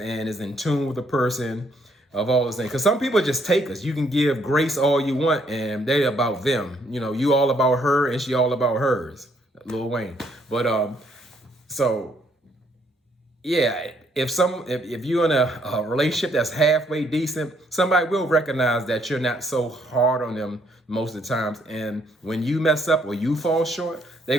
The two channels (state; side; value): normal; both; correlation 0.69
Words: is in tune with the person of all those things. Because some people just take us. You can give grace all you want and they about them. You all about her and she all about hers. Lil Wayne. But so yeah, if you're in a relationship that's halfway decent, somebody will recognize that you're not so hard on them most of the times. And when you mess up or you fall short, they're